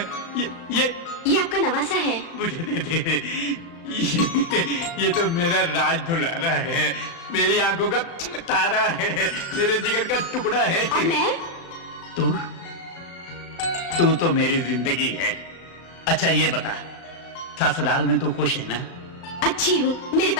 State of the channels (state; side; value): late; right; 36 ms